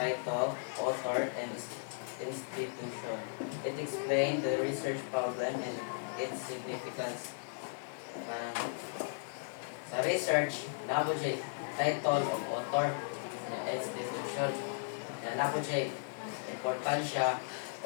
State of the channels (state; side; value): silent; right; digital silence